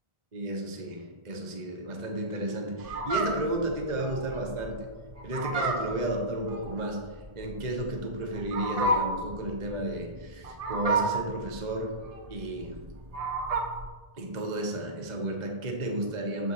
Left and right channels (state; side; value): late; left; 1.4 ms